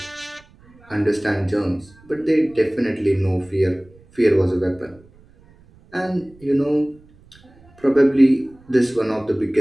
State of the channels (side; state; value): right; noise; rumble, 27 dB below the sound